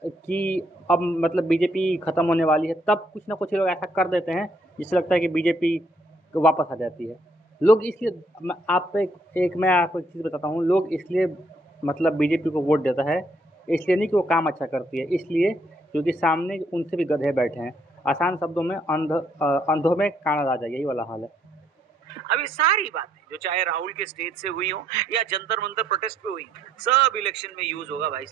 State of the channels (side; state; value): both; normal; correlation 0.70